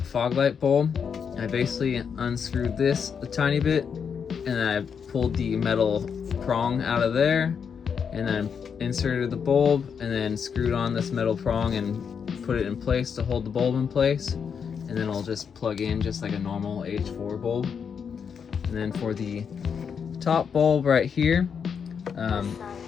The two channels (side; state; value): right; quieter; 6.8 dB